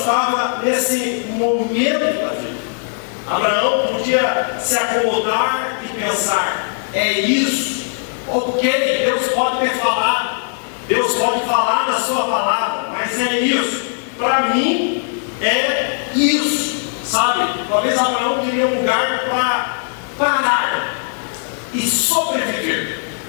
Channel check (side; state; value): right; silent; 67 dB below the other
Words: nesse momento da vida. Abraão podia se acomodar e pensar: é isso, ok, Deus pode ter falado, Deus pode falar na sua palavra, mas é isso, para mim é isso, sabe? Talvez Abraão queria um lugar para parar e sobreviver,